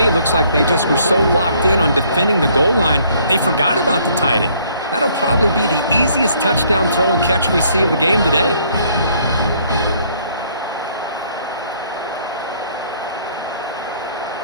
looks like they just were so locked in on defending the goal line, they forgot about the tight end. That'll probably be the easiest touchdown throw and catch we see of the game today.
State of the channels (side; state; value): both; inverted; correlation -0.63